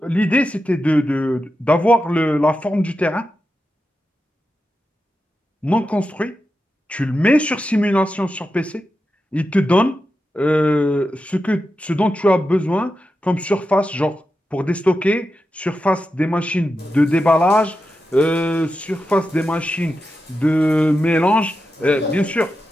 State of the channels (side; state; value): both; normal; correlation 0.90